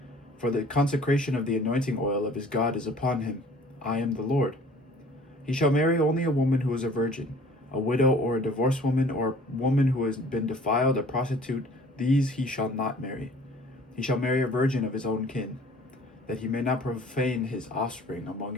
For the consecration of the anointing oil of his God is upon him. I am the Lord. He shall marry only a woman who is a virgin, a widow or a divorced woman, or a woman who has been defiled, a prostitute. These he shall not marry. He shall marry a virgin of his own kin, that he may not profane his offspring among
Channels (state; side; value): normal; both; correlation 0.51